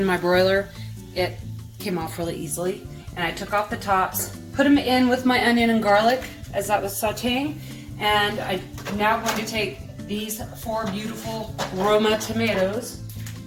my broiler, it came off really easily. And I took off the tops, put them in with my onion and garlic as that was sauteing. And I'm now going to take these 4 beautiful Roma tomatoes.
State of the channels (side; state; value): both; identical; correlation 1.00